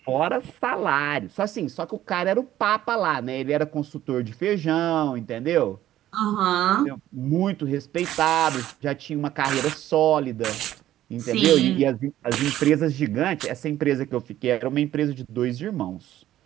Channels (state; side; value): quieter; left; 13.1 dB